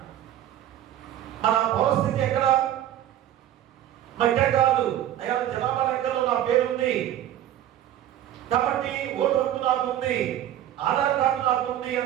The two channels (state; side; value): quieter; left; 11.9 dB